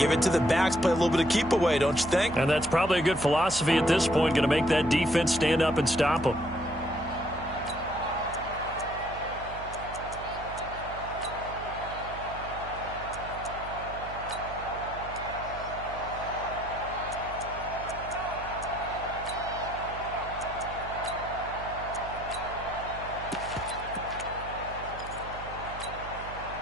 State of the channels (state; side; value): noise; right; hum, 13 dB below the sound